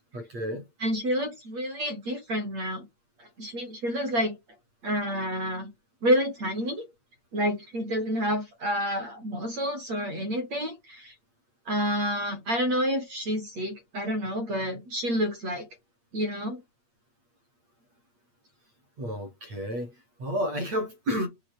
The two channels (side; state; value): left; late; 8.6 ms